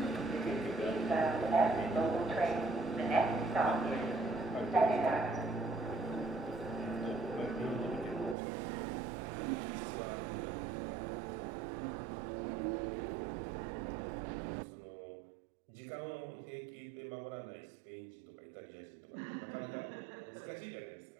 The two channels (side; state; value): left; drops out; at 8.3 s